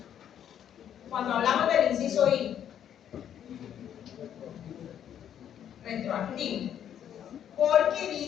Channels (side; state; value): right; quieter; 9.7 dB